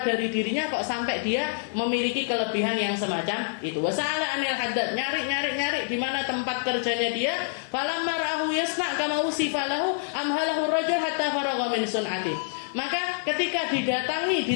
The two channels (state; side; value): silent; right; digital silence